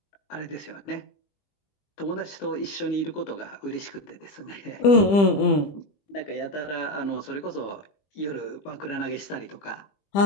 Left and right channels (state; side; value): late; right; 20 ms